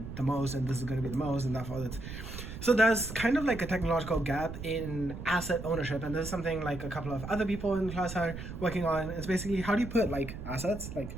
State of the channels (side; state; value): right; noise; rumble, 9 dB below the sound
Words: the most, and this is going to be the most, and therefore that's. So there's kind of like a technological gap in asset ownership, and this is something like a couple of other people in class are working on. It's basically, how do you put like assets, like